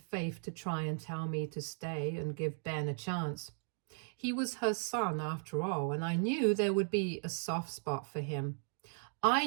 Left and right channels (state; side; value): silent; left; 53 dB below the other